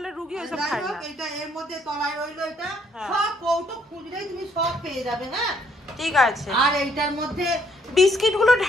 রুগী ওইসব খাই না। এটা এর মধ্যে তলায় রইলো, এটা সব কৌটো খুঁজলেই তুমি সব পেয়ে যাবে। হ্যাঁ ঠিক আছে। আর এইটার মধ্যে বিস্কিট গুলো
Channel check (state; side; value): normal; both; correlation 0.67